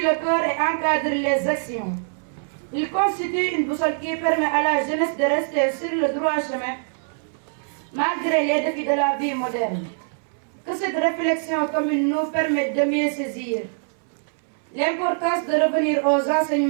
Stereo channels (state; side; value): silent; left; 63 dB below the other